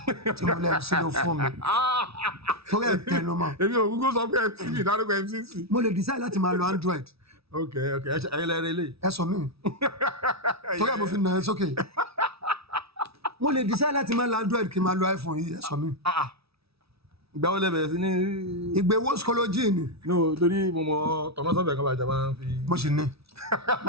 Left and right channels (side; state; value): left; late; 0.77 ms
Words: Tí mo lẹ́nu sí ló fún mi. Torí ẹ̀ tẹnu mọ́. Èmi ò Google sọ pé MCC ìdádúgbò MCC. Mo lè decide láti máa lo Android. Ẹ̀yin lẹ́rìí lè. Ẹ sọ mí. Torí ẹ̀ mo fi nà ẹ́ sókè. Mo lè decide láti máa lo Android kí n máa lo iPhone yìí, ẹ sọ mí. Ìgbà wo lẹ bẹ̀rẹ̀ sí ní. Ìgbéwó skology ni. No, torí mo mọ tọmọsọ́bẹ̀ kan bàjẹ́ máa ń fi. Mo sì ní.